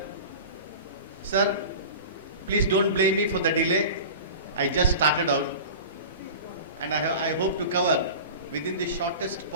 Sir, please don't blame me for the delay. I just started out, and I hope to cover within the shortest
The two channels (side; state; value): both; inverted; correlation -0.35